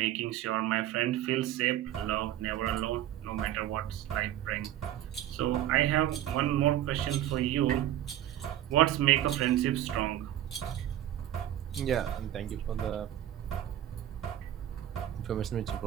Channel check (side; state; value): left; quieter; 12.5 dB